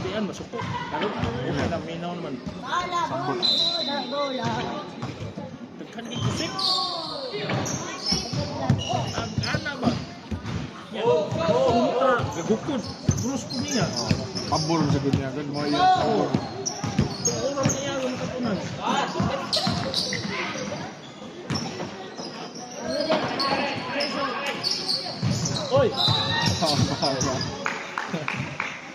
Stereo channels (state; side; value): identical; both; correlation 1.00